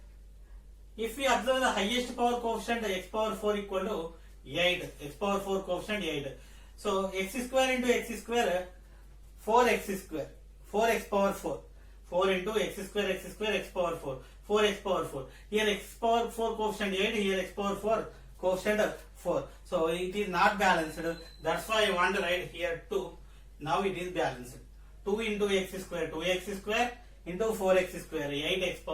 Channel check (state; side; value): identical; both; correlation 1.00